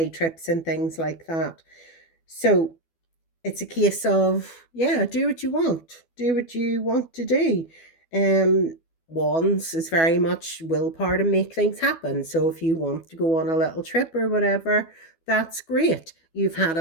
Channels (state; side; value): late; right; 12 ms